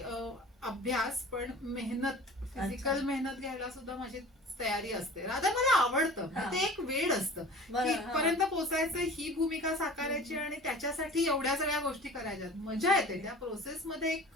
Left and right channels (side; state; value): both; normal; correlation 0.41